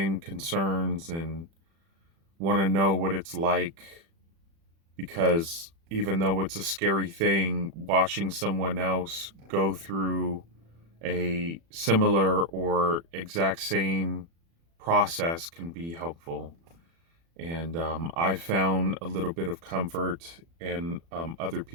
concerns and want to know what it's like, because even though it's a scary thing, watching someone else go through a similar or exact same process can be helpful. And I found a little bit of comfort in other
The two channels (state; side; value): late; left; 36 ms